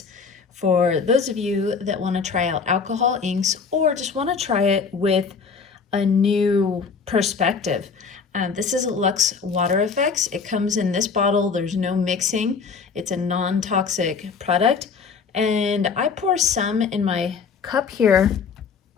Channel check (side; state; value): right; quieter; 5.5 dB